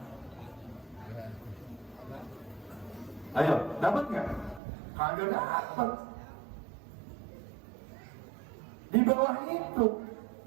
Ayo, dapat nggak? Kagak dapat. Di bawah itu,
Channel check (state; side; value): drops out; left; at 4.6 s